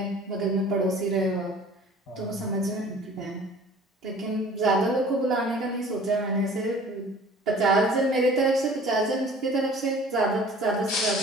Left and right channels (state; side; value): normal; both; correlation 0.48